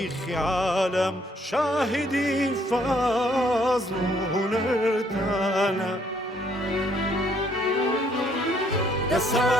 عالم شاهدی فضل و هنرتانا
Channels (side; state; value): both; normal; correlation 0.67